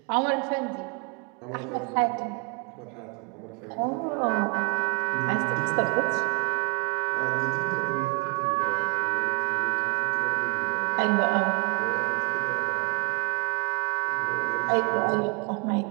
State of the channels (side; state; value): left; quieter; 33.6 dB